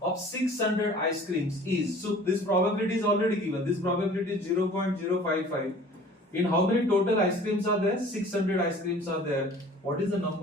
of 600 ice creams is, so this probability is already given. This probability is 0.055. In how many total ice creams are there? 600 ice creams are there. What is the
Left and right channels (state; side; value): normal; both; correlation 0.48